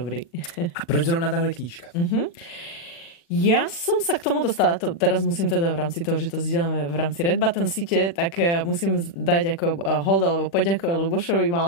A proč zrovna tahle knížka? Ja som sa k tomu dostala, teraz musím teda v rámci toho, že to zdieľame v rámci Red Button siete, tak musím dať ako hold alebo poďakovať Lubošovi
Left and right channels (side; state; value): right; late; 36 ms